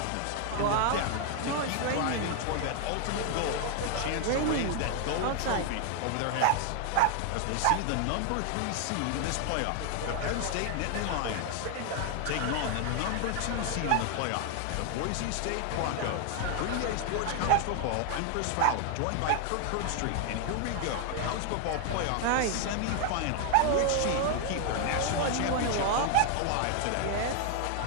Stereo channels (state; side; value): different; both; correlation 0.00